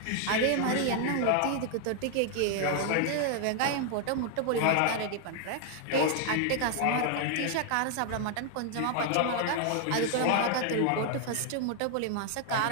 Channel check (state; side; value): different; both; correlation 0.00